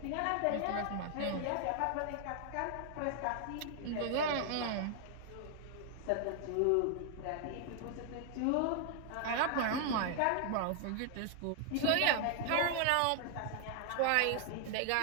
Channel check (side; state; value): both; different; correlation 0.00